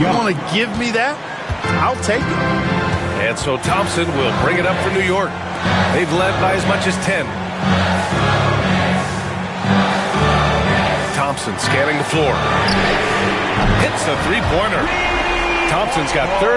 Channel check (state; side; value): identical; both; correlation 1.00